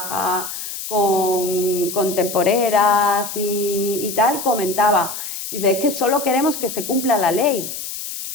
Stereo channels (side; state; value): left; noise; hiss, 7 dB below the sound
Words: con temporeras y tal, comentaba, dice, es que solo queremos que se cumpla la ley.